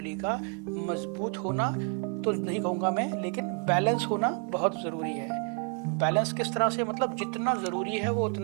का मजबूत होना तो नहीं कहूँगा मैं, लेकिन बैलेंस होना बहुत ज़रूरी है। बैलेंस किस तरह से, मतलब जितना ज़रूरी है वो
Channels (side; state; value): left; quieter; 38.2 dB